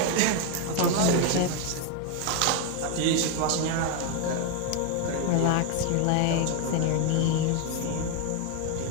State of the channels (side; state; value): both; different; correlation 0.01